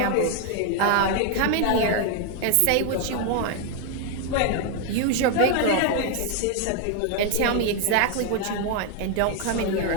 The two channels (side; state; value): both; different; correlation 0.01